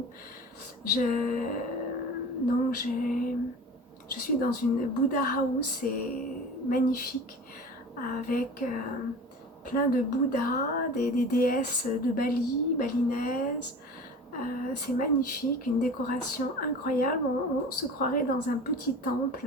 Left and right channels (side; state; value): both; normal; correlation 0.37